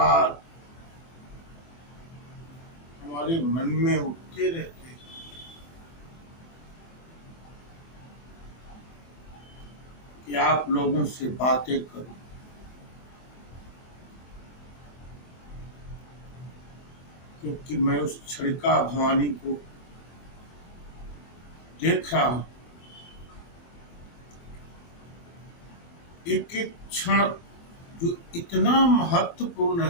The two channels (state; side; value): late; right; 24 ms